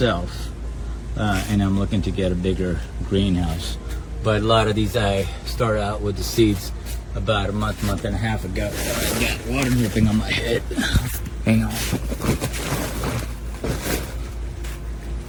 and I'm looking to get a bigger greenhouse. But a lot of these I started out with the seeds about a month and a half ago. I got water dripping on my head. Hang on.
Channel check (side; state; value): both; identical; correlation 1.00